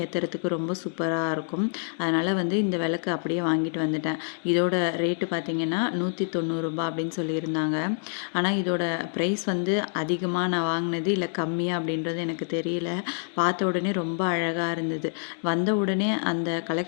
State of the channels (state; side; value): silent; right; digital silence